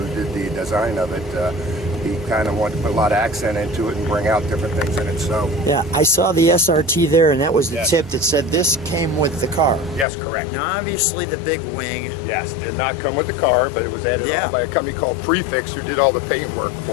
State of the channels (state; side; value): drops out; right; at 10.1 s